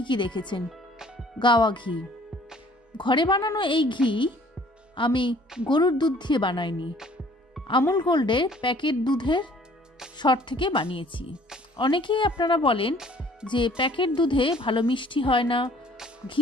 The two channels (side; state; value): both; normal; correlation 0.55